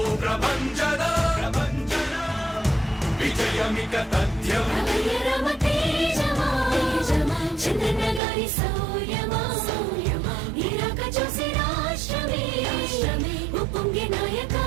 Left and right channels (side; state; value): left; drops out; at 8.2 s